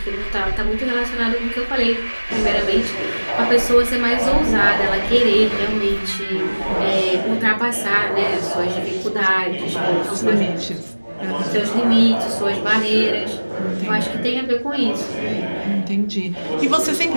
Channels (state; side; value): inverted; both; correlation -1.00